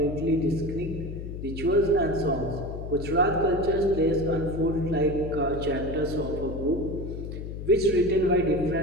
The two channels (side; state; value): left; noise; hum, 8 dB below the sound